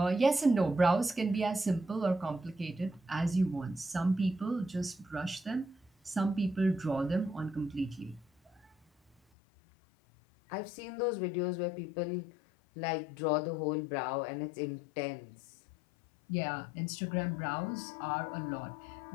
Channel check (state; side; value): drops out; right; at 9.2 s